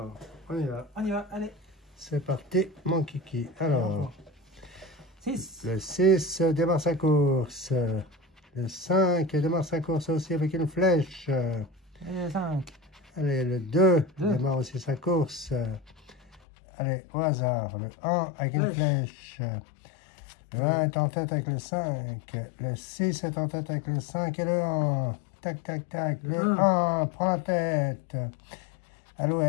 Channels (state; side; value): drops out; right; at 16.4 s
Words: on y va. On y va, allez. C'est parti, mon kiki. Alors, 6. Le 6 démarre sa course. Le 5 démarre sa course aussi avec une flèche. Allez, le 5. Allez, le 2 démarre aussi sa course. Allez, au hasard. Le 1 avec une flèche. Le 1 est en tête avec le 5. Le 6 est en tête avec le 5 et le 1. Tac, tac, tac. Le 1 prend la tête.